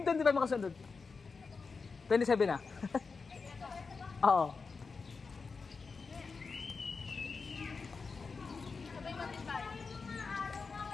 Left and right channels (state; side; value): quieter; right; 4.7 dB